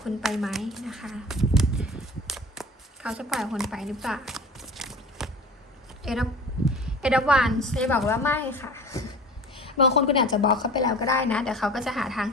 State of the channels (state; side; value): normal; both; correlation 0.39